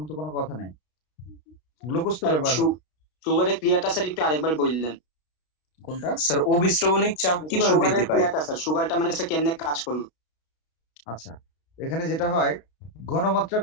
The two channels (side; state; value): right; late; 33 ms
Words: তো কোনো কথা নেই, গ্লুকোজ তো ব্যবহার হবে। সুগারের ক্রিয়াটা স্যার একটু আরেকবার বললেন। কোনটা? স্যার অবিশ্রবণিক চাপ কিভাবে সুগারের বৃদ্ধি পায়? ক্রিয়াটা স্যার, সুগারটা মানে স্যার কেমনে কাজ করলো? আচ্ছা, এখানে যেটা হয়, ঘনমাত্রা